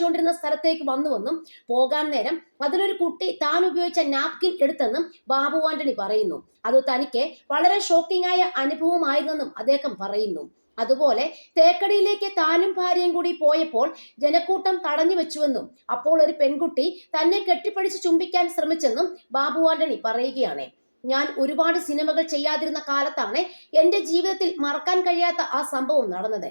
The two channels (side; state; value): both; inverted; correlation -1.00